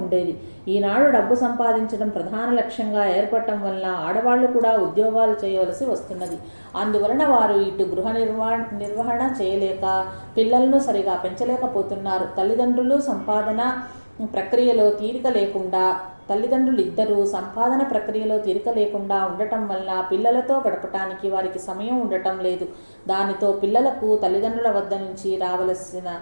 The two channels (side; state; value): both; inverted; correlation -1.00